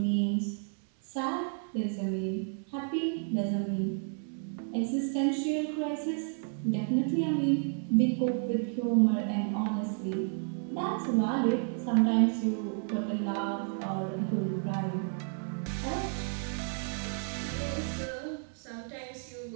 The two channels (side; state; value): left; silent; 57 dB below the other